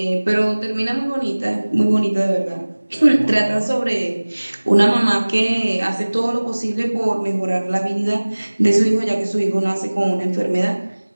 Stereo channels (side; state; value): both; inverted; correlation -1.00